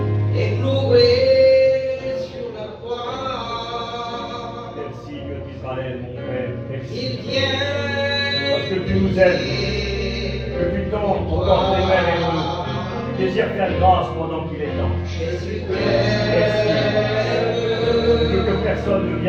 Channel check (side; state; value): both; identical; correlation 1.00